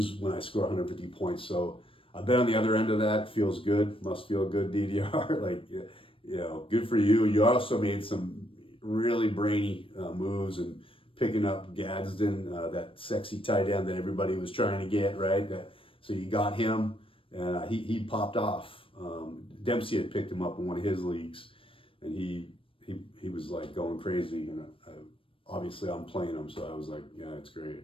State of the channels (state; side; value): late; right; 0.26 ms